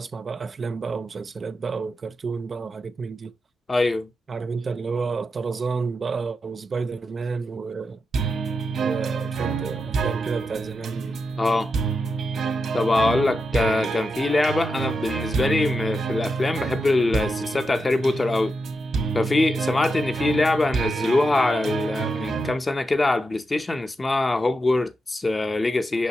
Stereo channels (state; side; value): normal; both; correlation 0.87